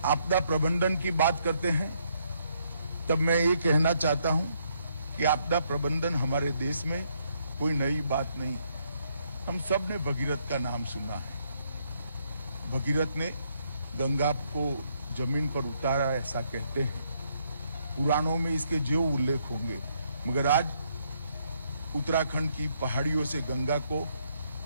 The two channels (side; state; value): both; inverted; correlation -0.72